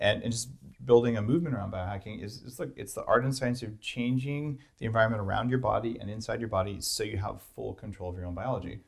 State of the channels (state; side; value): identical; both; correlation 1.00